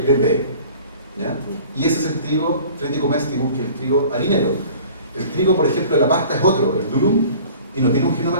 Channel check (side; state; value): both; inverted; correlation -0.46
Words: ¿Ya? Y ese es el trigo Triticum aestivum, que es el trigo harinero. El trigo, por ejemplo, de la pasta es otro, el durum, y no tiene un